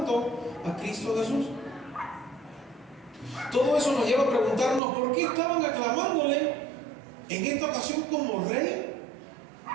a Cristo Jesús. Todo eso nos lleva a preguntarnos por qué estaban aclamándole en esta ocasión como rey.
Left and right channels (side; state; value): left; drops out; at 4.8 s